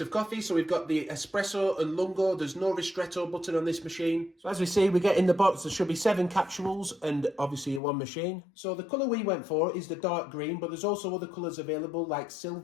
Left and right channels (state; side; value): drops out; right; at 7.8 s